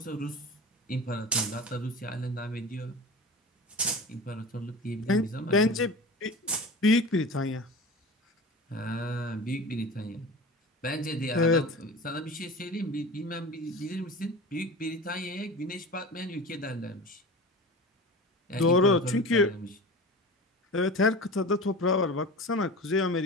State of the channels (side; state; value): both; normal; correlation 0.34